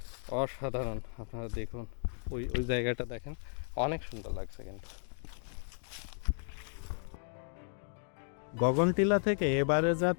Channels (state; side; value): silent; right; 55 dB below the other